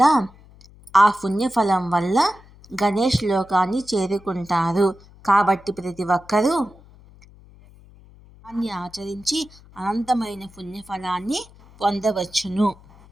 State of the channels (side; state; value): left; noise; hum, 24 dB below the sound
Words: ఆ పుణ్యఫలం వల్ల గణేష్ లోకాన్ని చేరుకుంటారు. కాబట్టి ప్రతి ఒక్కరూ దాన్ని ఆచరించి అనంతమైన పుణ్యఫలాన్ని పొందవచ్చును.